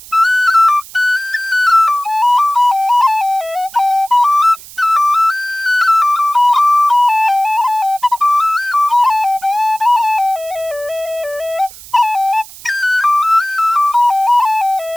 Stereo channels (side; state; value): right; noise; hiss, 18 dB below the sound